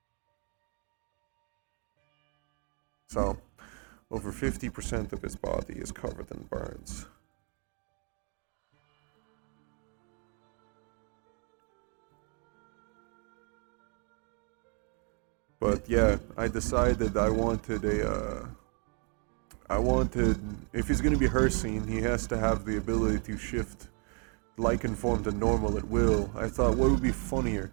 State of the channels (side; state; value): left; quieter; 38.2 dB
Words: So, over 50% of his body is covered in burns. But yeah, I decided I wanted, if he's gonna be Hircine, he has to have the ability to shift Lycan form to normal at will. I thought, what would be funnier?